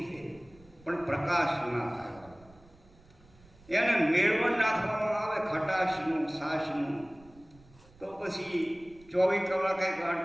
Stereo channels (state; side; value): noise; right; rumble, 26 dB below the sound